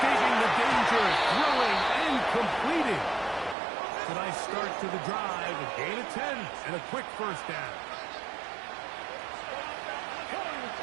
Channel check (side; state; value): left; drops out; at 3.6 s